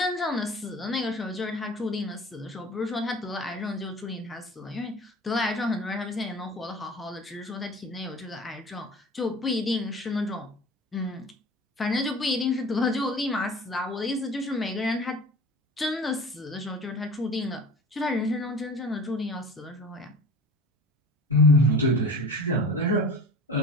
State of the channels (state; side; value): normal; both; correlation 0.39